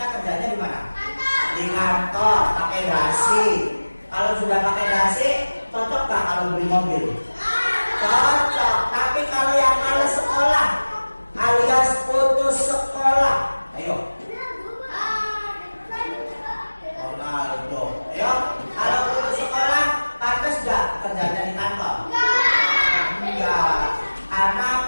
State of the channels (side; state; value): both; inverted; correlation -1.00